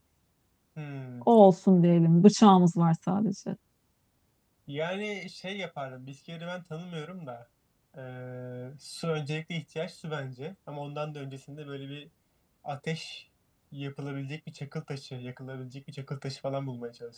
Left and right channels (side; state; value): both; identical; correlation 1.00